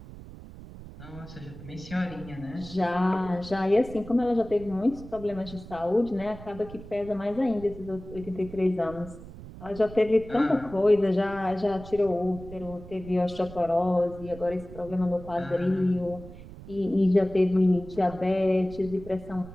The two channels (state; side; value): noise; right; rumble, 15 dB below the sound